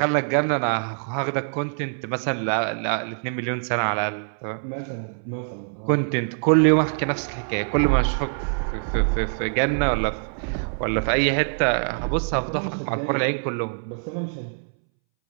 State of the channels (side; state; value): left; silent; 62 dB below the other